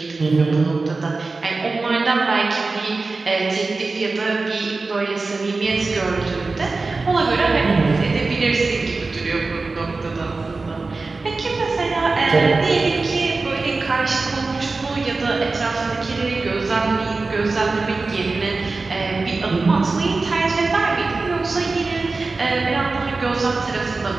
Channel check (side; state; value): left; quieter; 3.7 dB